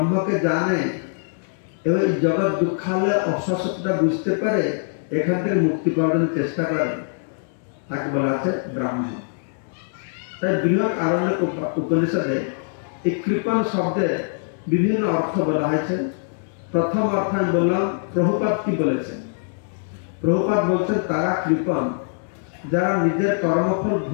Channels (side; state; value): right; silent; digital silence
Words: জানে এবং জগৎ দুঃখালয় অসত্যটা বুঝতে পারে, এখান থেকে মুক্তি পাওয়ার চেষ্টা করে, তাকে বলা আছে ব্রাহ্মণ। তাই বৃহৎ আরণ্যক উপনিষদে এই কৃপণ শব্দের বিভিন্ন অর্থ বলা হয়েছে। প্রথম অর্থ আমি বললাম প্রভুপাদ কি বলেছেন। প্রভুপাদ বলছেন তারা কৃপণ যারা নিজের কর্মফল